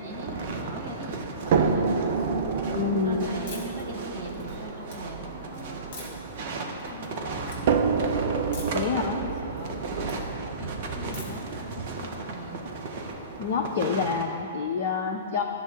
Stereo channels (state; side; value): inverted; both; correlation -0.35